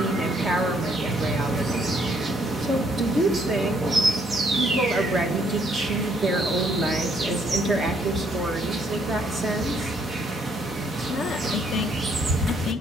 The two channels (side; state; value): both; normal; correlation 0.69